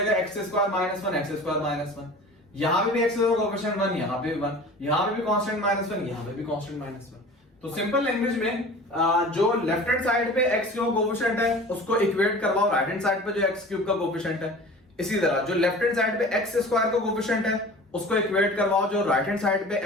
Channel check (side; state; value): both; normal; correlation 0.40